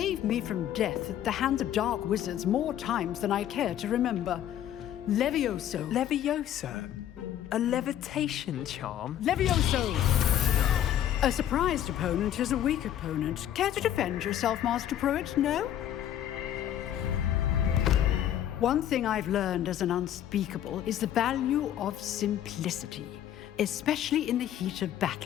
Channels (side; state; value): right; quieter; 11.1 dB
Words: me from death at the hands of dark wizards more times than I care to remember. Levioso. Levioso? A levitation charm? Levioso! A surprised opponent is a weak opponent. Care to defend yourself, Master Pruitt? No? One thing I've learned as an unspeakable is the value of simplicity, especially in the heat of